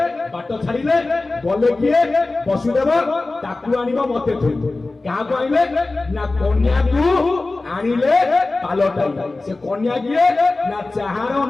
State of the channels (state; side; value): quieter; right; 3.3 dB